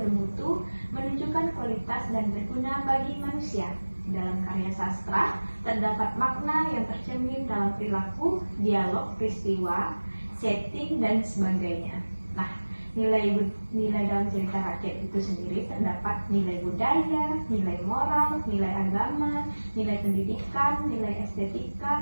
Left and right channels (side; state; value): both; inverted; correlation -1.00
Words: menunjukkan kualitas dan berguna bagi manusia. Dalam karya sastra, terdapat makna yang tercermin dalam perilaku, dialog, peristiwa, setting, dan sebagainya. Nah, nilai dalam cerita rakyat itu sendiri terdapat nilai budaya, nilai moral, nilai agama, nilai pendidikan, nilai